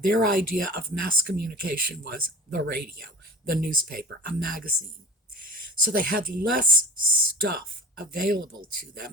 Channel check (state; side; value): normal; both; correlation 0.38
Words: idea of mass communication was the radio, the newspaper, a magazine. So they had less stuff available to